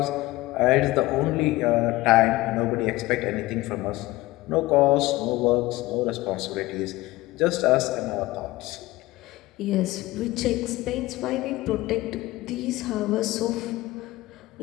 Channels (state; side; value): quieter; right; 18.9 dB